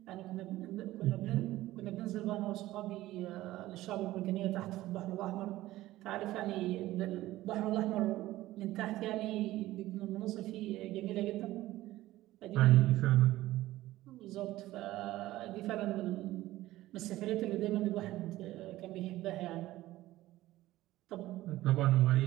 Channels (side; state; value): left; quieter; 16.2 dB